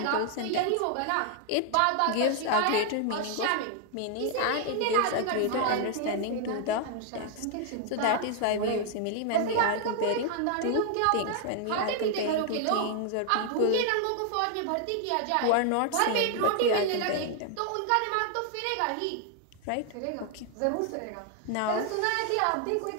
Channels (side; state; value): both; different; correlation 0.00